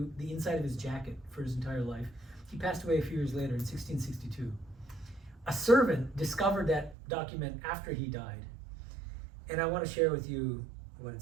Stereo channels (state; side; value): drops out; left; at 7.0 s